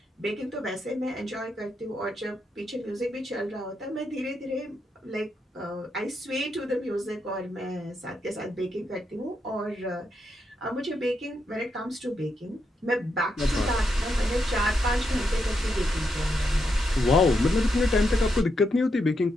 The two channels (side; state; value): both; normal; correlation 0.82